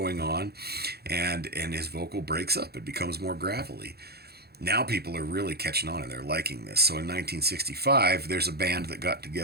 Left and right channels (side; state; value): left; late; 0.46 ms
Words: on, and his vocal breaks up. It becomes more gravelly. Now people are really catching on and they're liking this. So in 1965, there's a band that got